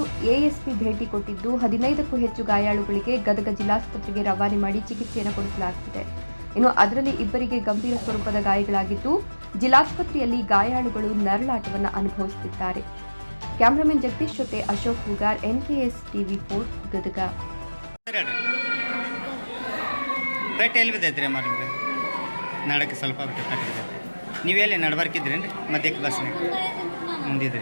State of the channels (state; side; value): inverted; both; correlation -1.00